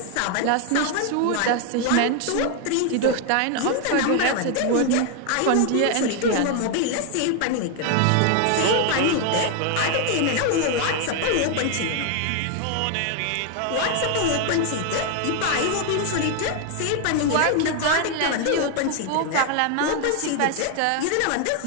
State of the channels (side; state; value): both; different; correlation 0.01